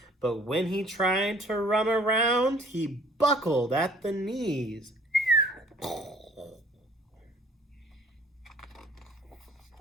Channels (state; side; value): normal; both; correlation 0.54